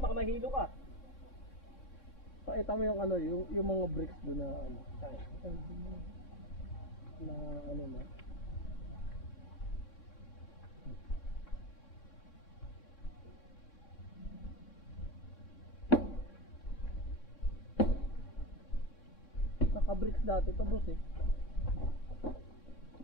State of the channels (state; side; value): late; right; 3.6 ms